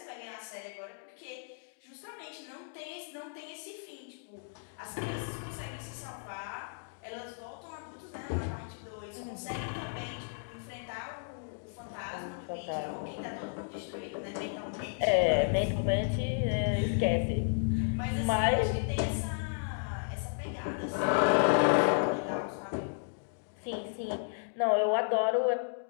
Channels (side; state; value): right; silent; digital silence